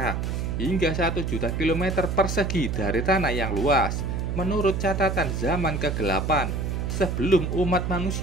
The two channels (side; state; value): right; noise; hum, 1 dB below the sound